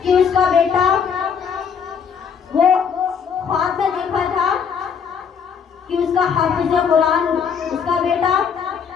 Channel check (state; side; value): quieter; right; 6.9 dB